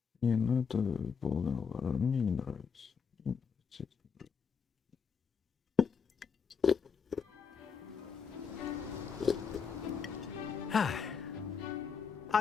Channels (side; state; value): right; quieter; 6.2 dB